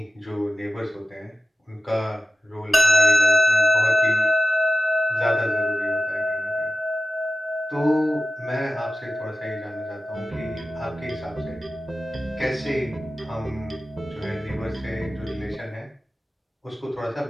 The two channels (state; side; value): normal; both; correlation 0.94